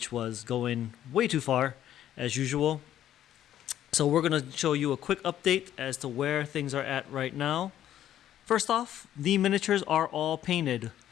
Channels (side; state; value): right; quieter; 11.6 dB